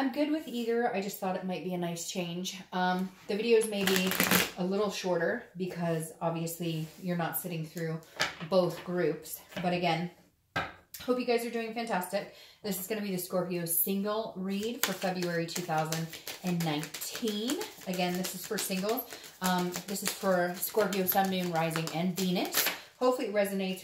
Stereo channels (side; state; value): both; identical; correlation 1.00